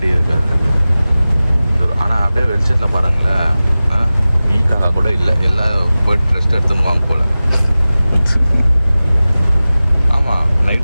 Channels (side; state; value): both; inverted; correlation -0.97